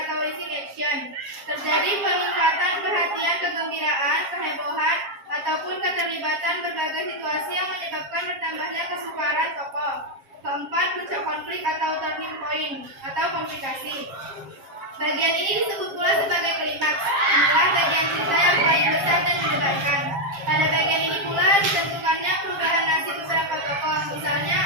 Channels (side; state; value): left; late; 7.4 ms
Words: rising action. Terjadi peningkatan perhatian, kegembiraan, kehebohan, ataupun keterlibatan berbagai situasi yang menyebabkan bertambahnya kesukaran tokoh. Keempat, puncak konflik atau turning point atau komplikasi. Bagian ini disebut pula sebagai klimaks. Inilah bagian cerita yang paling besar dan mendebarkan. Pada bagian ini pula ditentukannya perubahan nasib beberapa tokoh. Misalnya,